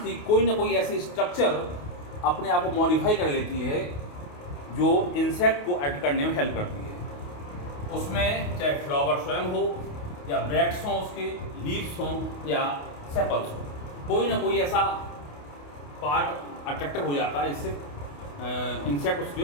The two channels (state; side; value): late; right; 28 ms